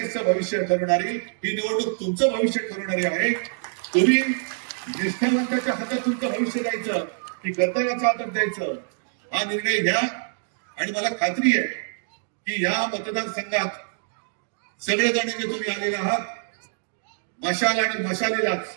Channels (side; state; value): left; silent; digital silence